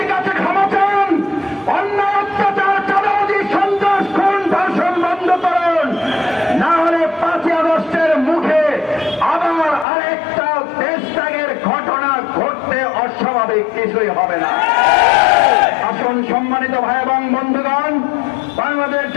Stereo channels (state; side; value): drops out; right; at 9.9 s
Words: কাছে ক্ষমা চান, অন্যায় অত্যাচার চাঁদাবাজি সন্ত্রাস খুন ধর্ষণ বন্ধ করুন, না হলে 5ই আগস্টের মুখে আবার আরেকটা দেশত্যাগের ঘটনা ঘটতে অস্বাভাবিক কিছুই হবে না। আসুন সম্মানিত ভাই এবং বন্ধুগণ, বাংলাদেশ